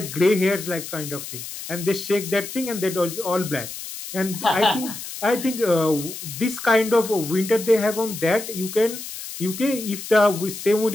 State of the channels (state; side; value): noise; left; hiss, 10 dB below the sound